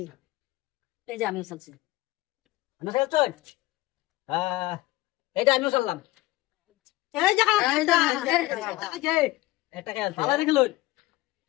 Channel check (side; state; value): right; quieter; 18.5 dB